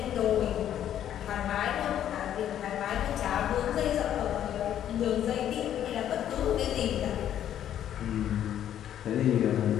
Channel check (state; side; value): quieter; right; 10.7 dB